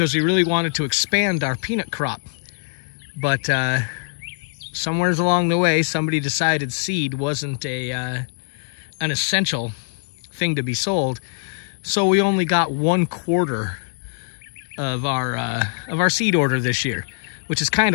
we really wanted to expand our peanut crop, but somewhere along the way, somebody decided seed wasn't an essential thing to be sold, so we only got 1/4 of our seed order this year, which is kind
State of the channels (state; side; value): silent; right; digital silence